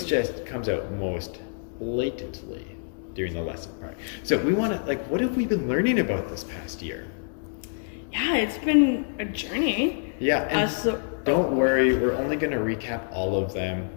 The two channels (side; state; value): right; silent; digital silence